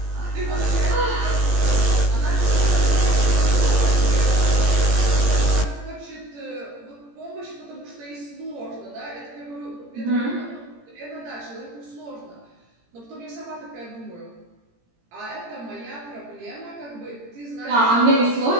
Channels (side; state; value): left; late; 17 ms